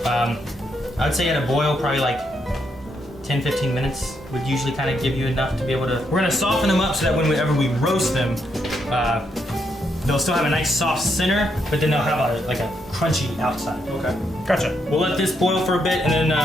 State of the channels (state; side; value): normal; both; correlation 0.78